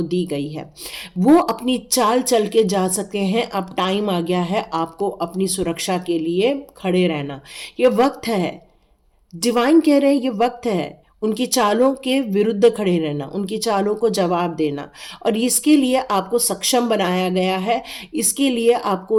दी गई है। वो अपनी चाल चल के जा सकते हैं। अब टाइम आ गया है आपको अपनी सुरक्षा के लिए खड़े रहना, ये वक्त है। डिवाइन कह रहे हैं ये वक्त है उनकी चालों के विरुद्ध खड़े रहना, उनकी चालों को जवाब देना, और इसके लिए आपको सक्षम बनाया गया है। इसके लिए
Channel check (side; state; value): both; identical; correlation 1.00